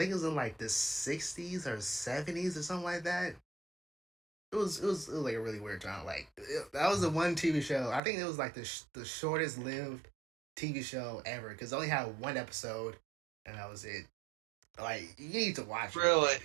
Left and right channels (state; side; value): drops out; left; at 8.0 s